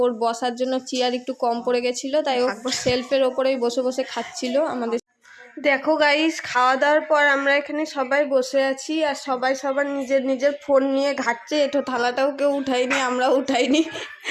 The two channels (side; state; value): both; identical; correlation 1.00